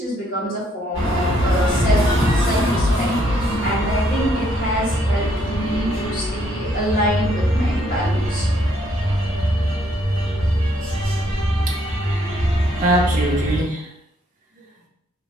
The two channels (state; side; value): normal; both; correlation 0.70